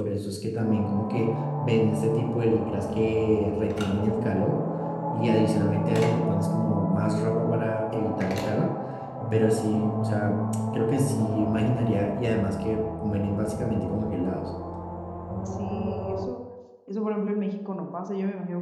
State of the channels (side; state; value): both; identical; correlation 1.00